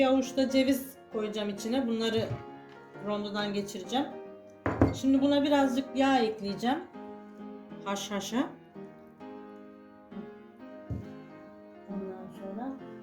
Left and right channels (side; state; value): both; identical; correlation 1.00